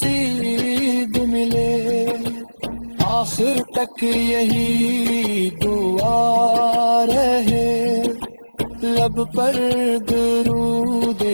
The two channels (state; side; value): inverted; both; correlation -1.00